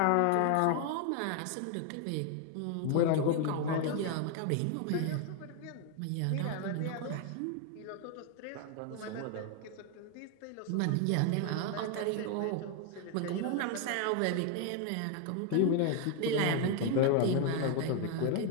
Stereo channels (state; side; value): different; both; correlation 0.01